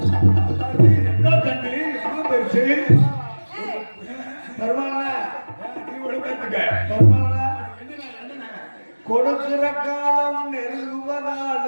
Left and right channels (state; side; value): inverted; both; correlation -1.00